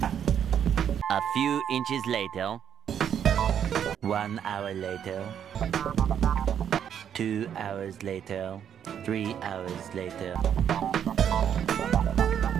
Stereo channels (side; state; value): left; quieter; 8.9 dB